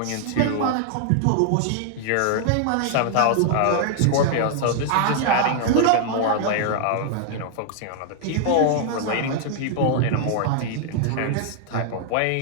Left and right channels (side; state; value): both; different; correlation -0.01